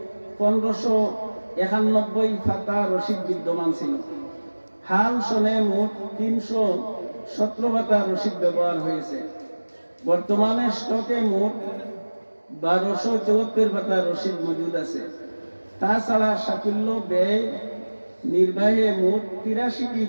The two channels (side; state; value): both; inverted; correlation -1.00